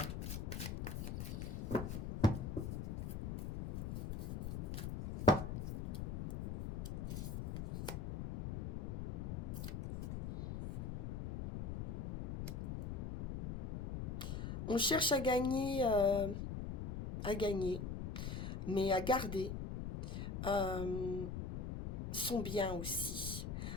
On cherche à gagner, mais à garder euh, son bien aussi,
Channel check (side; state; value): left; noise; rumble, 4 dB below the sound